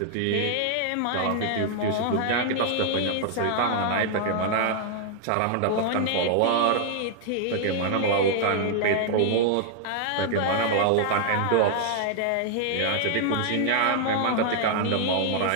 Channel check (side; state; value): both; different; correlation 0.00